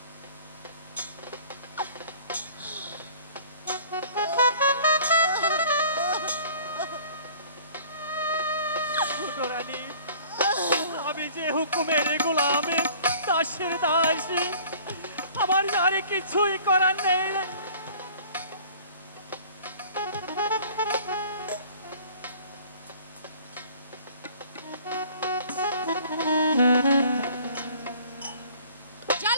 ছোট রানী, আমি যে হুকুমের গোলামে দাসের দাসী, আমার আর কিছুই করার নেই।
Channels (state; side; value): inverted; both; correlation -0.50